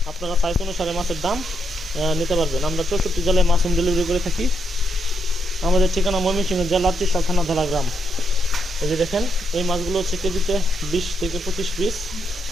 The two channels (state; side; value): normal; both; correlation 0.79